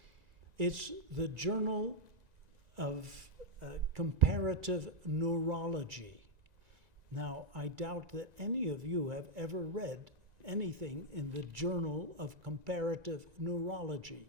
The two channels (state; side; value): late; left; 1.9 ms